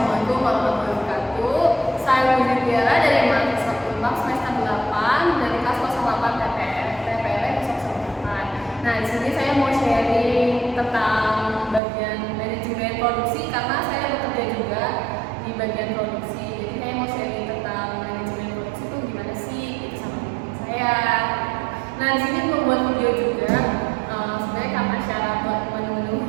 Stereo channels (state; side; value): drops out; left; at 11.8 s